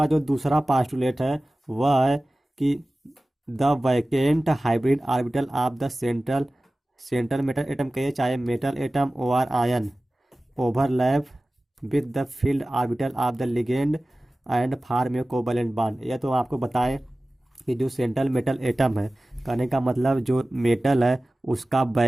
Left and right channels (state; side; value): normal; both; correlation 0.97